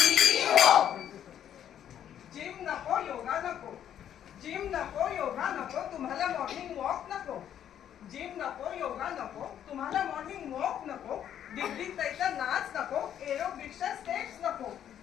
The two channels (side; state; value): right; quieter; 10.0 dB